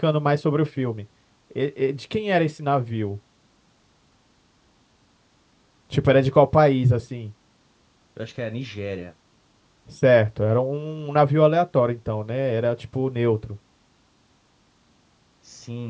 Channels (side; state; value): both; identical; correlation 1.00